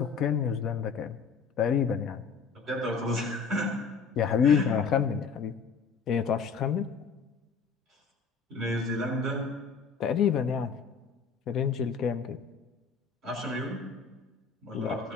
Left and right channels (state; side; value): quieter; right; 5.5 dB